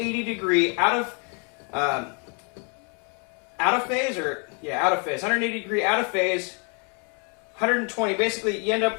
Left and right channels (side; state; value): right; quieter; 37.0 dB